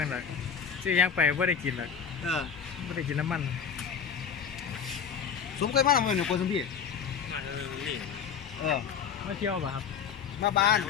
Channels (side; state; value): right; quieter; 7.2 dB